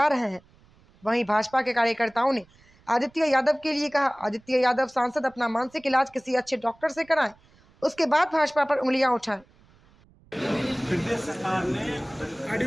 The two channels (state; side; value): noise; right; rumble, 30 dB below the sound